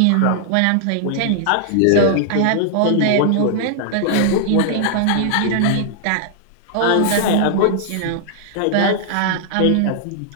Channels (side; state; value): both; different; correlation -0.01